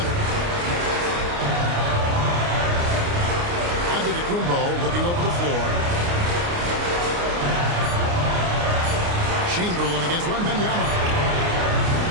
Antetokounmpo looking over the floor. Chamberlain against Wembanyama.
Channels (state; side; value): late; left; 29 ms